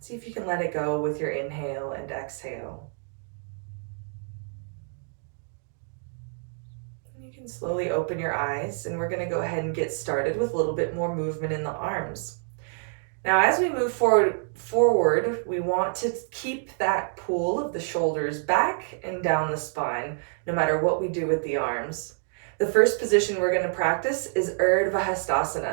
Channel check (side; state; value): left; silent; 57 dB below the other